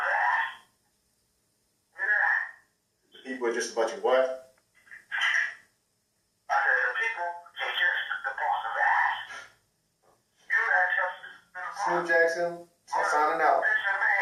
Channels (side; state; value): both; identical; correlation 1.00